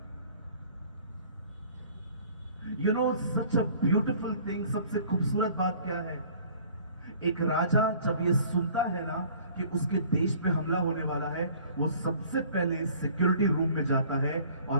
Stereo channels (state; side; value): inverted; both; correlation -0.52